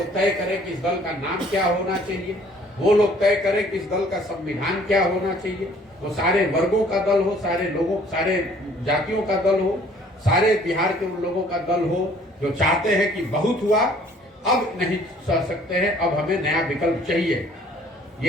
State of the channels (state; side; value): normal; both; correlation 0.57